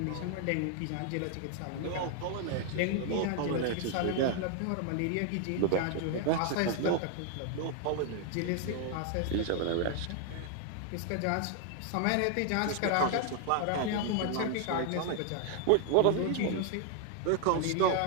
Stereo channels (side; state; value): both; different; correlation 0.00